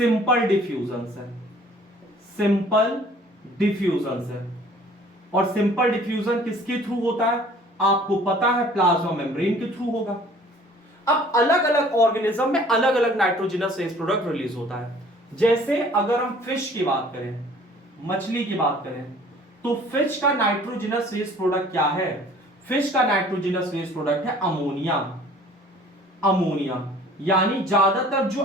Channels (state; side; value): normal; both; correlation 0.52